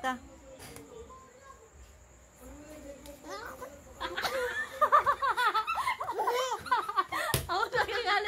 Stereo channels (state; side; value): identical; both; correlation 1.00